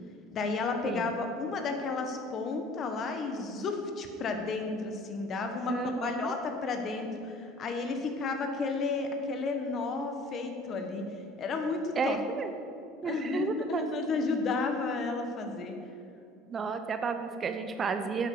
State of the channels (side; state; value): both; normal; correlation 0.51